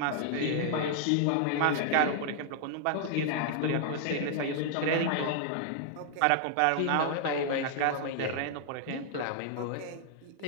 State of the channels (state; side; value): different; both; correlation -0.01